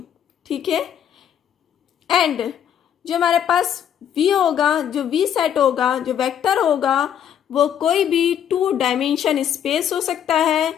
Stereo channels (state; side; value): quieter; right; 9.3 dB